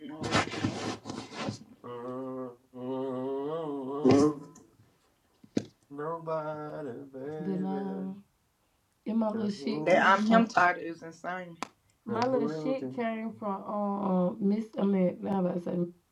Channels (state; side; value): identical; both; correlation 1.00